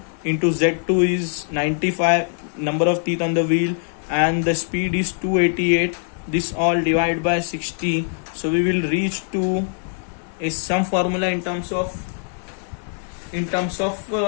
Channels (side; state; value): right; silent; 57 dB below the other